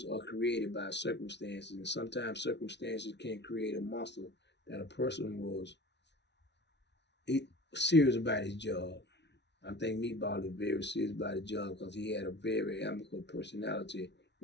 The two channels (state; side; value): late; right; 0.50 ms